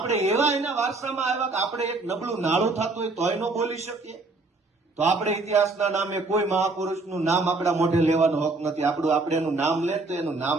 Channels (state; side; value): quieter; left; 3.4 dB